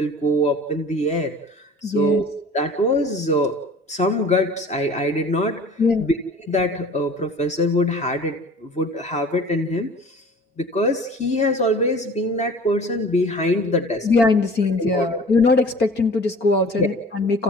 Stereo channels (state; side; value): normal; both; correlation 0.45